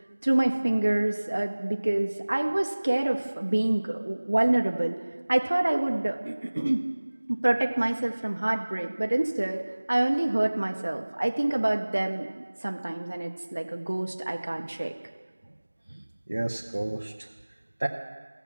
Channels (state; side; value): inverted; both; correlation -1.00